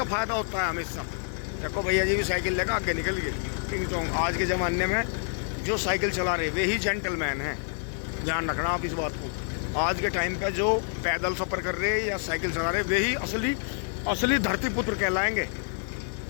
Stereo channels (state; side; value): silent; right; digital silence